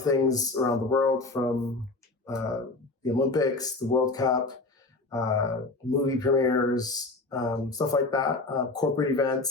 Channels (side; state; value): right; quieter; 3.2 dB